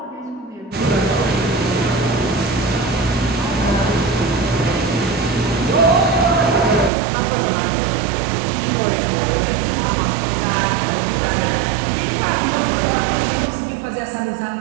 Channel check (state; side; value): drops out; left; at 6.9 s